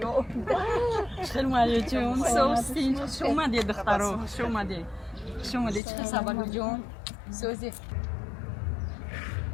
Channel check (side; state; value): right; drops out; at 5.8 s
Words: خیلی مهیا جون سوستی شما دی دخترو شما دی چه خبر جون سوزی